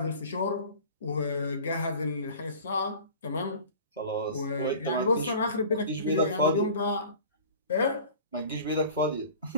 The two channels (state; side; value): inverted; both; correlation -0.42